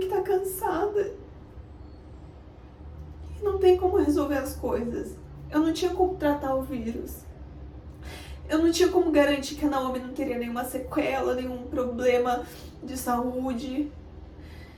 tá cansada. E não tem como resolver as coisas. Eu não tinha como tratar o vírus. Eu não tinha como garantir que a Naomi não teria nenhuma sequela, nenhum problema de saúde.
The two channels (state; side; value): identical; both; correlation 1.00